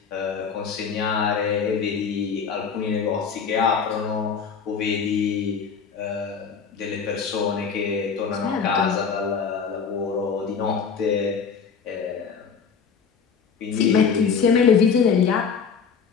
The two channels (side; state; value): right; quieter; 6.2 dB